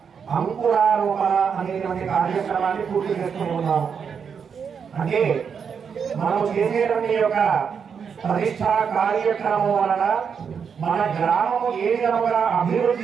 అంకురారోపణ అనేటువంటి కార్యక్రమాన్ని పూర్తి చేస్తూ ఉన్నాము. అంటే మనం చేసేటువంటి యొక్క ప్రతిష్టా కార్యక్రమం వలన మన గ్రామము ఏ విధంగా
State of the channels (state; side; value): quieter; left; 6.6 dB